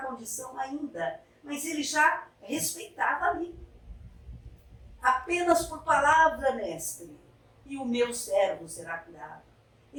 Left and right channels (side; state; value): both; identical; correlation 1.00